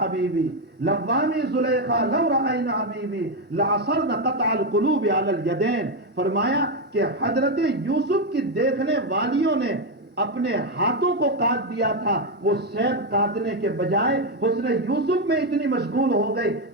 حبیبی، لوامی زلیخا لو رأینا حبیبی لعصرن قطع القلوب علی الیدین، فرمایا کہ حضرت یوسف کی دیکھنے والیوں نے اپنے ہاتھوں کو کاٹ دیا تھا، وہ سیب کاٹنے کے بجائے حسن یوسف میں اتنی مشغول ہو گئے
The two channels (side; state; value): both; normal; correlation 0.06